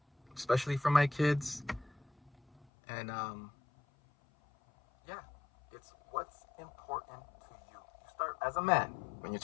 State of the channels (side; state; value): right; drops out; at 2.7 s